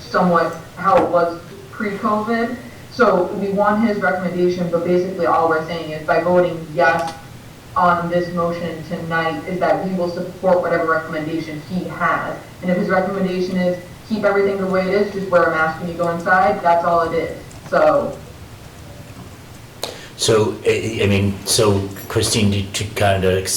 how it was pre-COVID? So we want his recommendation, but basically all we're saying is by voting yes on this motion tonight is that we will support whatever recommendation he has. And if his recommendation is keep everything the way it is, just wear a mask when you go inside, that's all it is. So I mean, so Christine, to kind of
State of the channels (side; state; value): both; identical; correlation 1.00